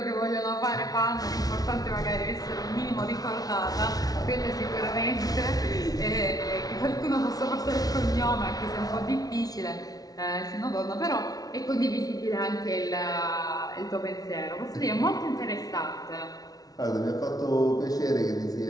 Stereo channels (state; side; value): late; right; 0.18 ms